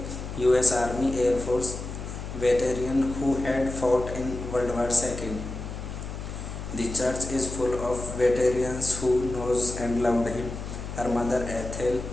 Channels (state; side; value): noise; left; hum, 8 dB below the sound